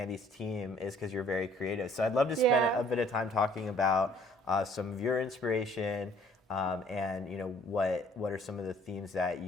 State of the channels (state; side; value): normal; both; correlation 0.59